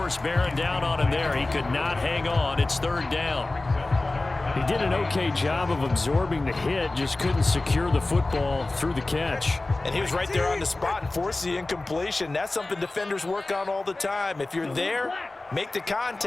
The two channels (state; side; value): quieter; right; 3.0 dB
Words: bearing down on him there. He could not hang on. It's 3rd down. He did an okay job of absorbing the hit, just couldn't secure the football through the catch. And he was right there on the spot and forced the incompletion. That's something defenders work on all the time. If you're there, make the